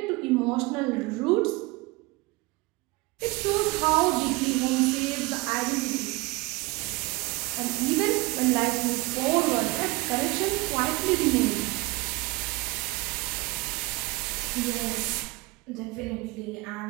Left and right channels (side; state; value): left; quieter; 23.5 dB